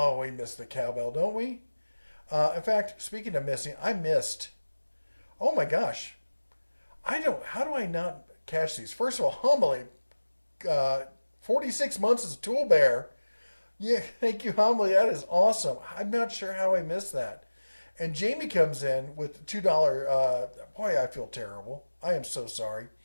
we miss the cowbell, don't we? In fact, speaking of missing, I missed. Oh my gosh. How do I not catch these? First of all, Homily, 46 months as a tool bear. Yeah, thank you, Homily. That is awesome. I'm not sure how I missed that. And Jamie comes in with $2. Boy, I feel terrible. I am so sorry.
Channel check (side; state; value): both; inverted; correlation -1.00